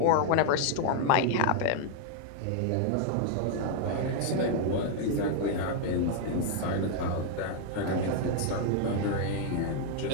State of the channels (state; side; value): different; both; correlation 0.00